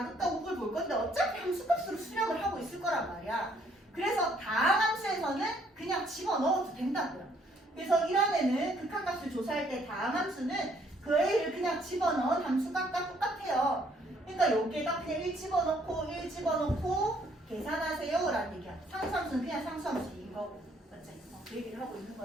우극을 볼 건데 어차피 함수값으로 수렴을 하고 있을 거란 말이야. 그래서 다항함수에서는 그냥 집어넣어도 된다고요. 그래서 1원에는 극한값을 조사할 때 다항함수는 그 A를 그냥 집어넣은 함수값과 똑같아요. 그러니까 여기에다 그냥 1 집어넣고 계산하세요 라는 얘기야. 상수함수는 그냥 상수함수인 거고. 맞지? 그 얘기를 하고 있는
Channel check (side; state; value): both; normal; correlation 0.65